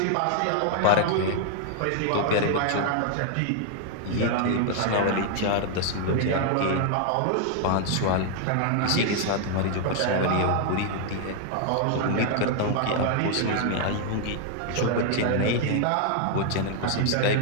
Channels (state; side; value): different; both; correlation 0.00